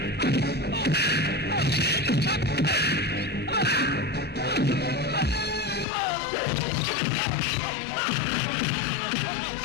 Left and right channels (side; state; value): right; drops out; at 5.9 s